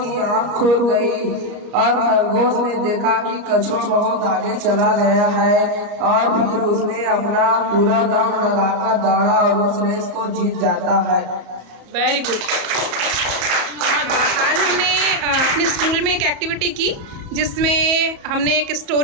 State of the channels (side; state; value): left; late; 34 ms